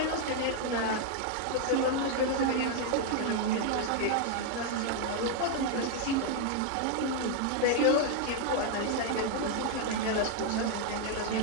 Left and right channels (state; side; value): different; both; correlation 0.00